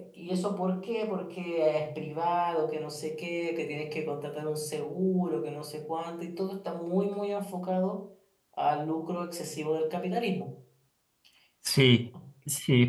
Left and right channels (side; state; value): both; identical; correlation 1.00